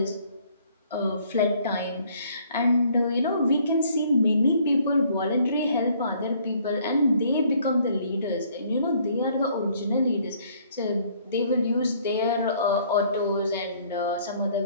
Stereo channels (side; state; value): both; inverted; correlation -0.61